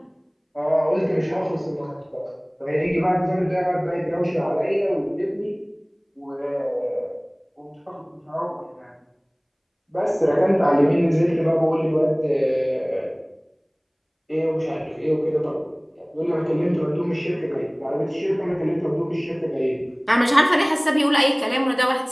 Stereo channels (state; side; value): identical; both; correlation 1.00